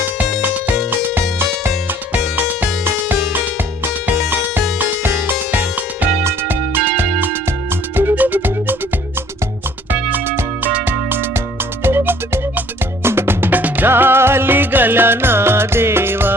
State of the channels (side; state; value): both; normal; correlation 0.57